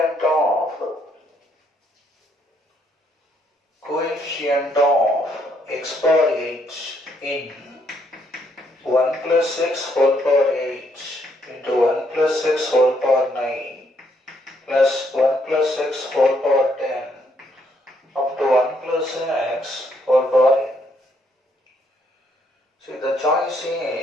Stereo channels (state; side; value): normal; both; correlation 0.71